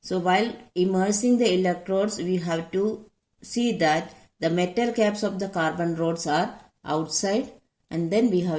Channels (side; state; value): both; identical; correlation 1.00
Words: So while immersing the electrodes, we have to see that the metal caps of the carbon rods are outside, and then we